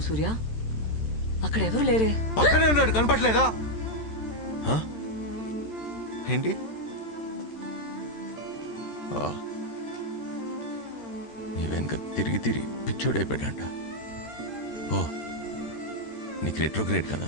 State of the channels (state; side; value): late; right; 13 ms